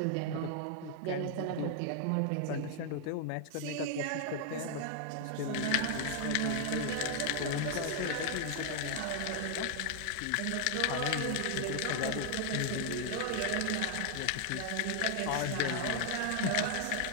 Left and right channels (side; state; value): both; different; correlation 0.00